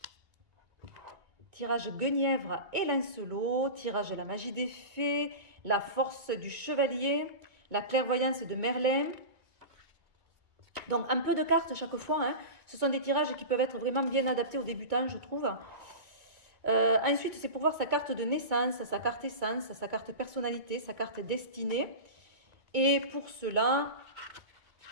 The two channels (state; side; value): late; left; 2.2 ms